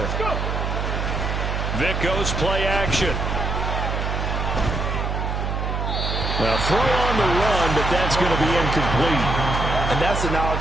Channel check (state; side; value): noise; right; hum, 1 dB below the sound